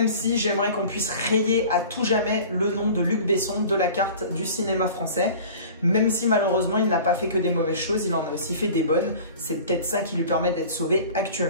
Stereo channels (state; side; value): inverted; both; correlation -0.42